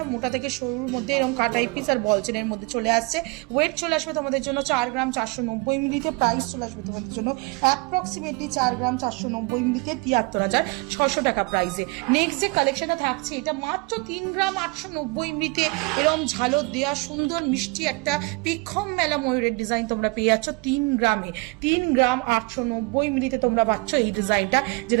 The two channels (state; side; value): quieter; left; 27.2 dB